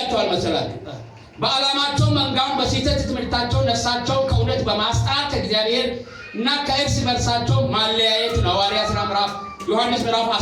መሰላችሁ? በዓላማቸው መንጋውን በስህተት ትምህርታቸው ነፍሳቸውን ከእውነት በማስጣት ከእግዚአብሔር እና ከእርስ በርሳቸው ማለያየት ነው። ሐዋርያ ሥራ ዮሐንስ ምዕራፍ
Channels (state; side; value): identical; both; correlation 1.00